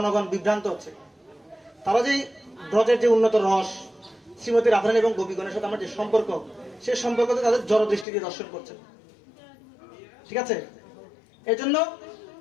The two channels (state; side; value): drops out; right; at 8.1 s